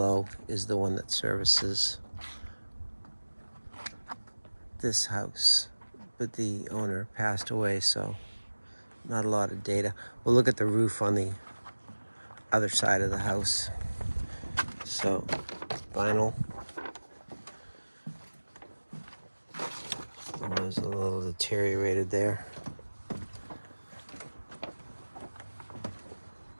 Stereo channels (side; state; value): both; inverted; correlation -1.00